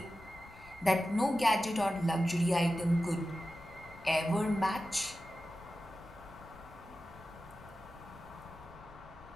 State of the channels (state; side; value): noise; left; rumble, 21 dB below the sound